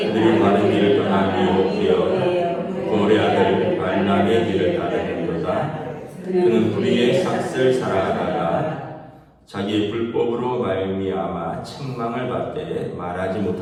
바른 길을 떠나 유혹되어 고레 아들 발람의 길을 따르는도다. 그는 불의의 삭슬 살아가다가 자기의 불법으로 말미암아 책망을 받되 말하지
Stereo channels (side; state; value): both; identical; correlation 1.00